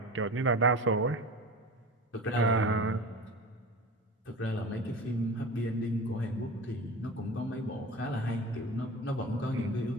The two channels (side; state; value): both; normal; correlation 0.32